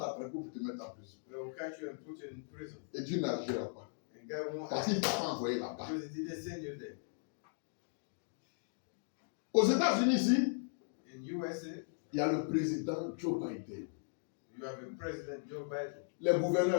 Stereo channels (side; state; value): right; silent; digital silence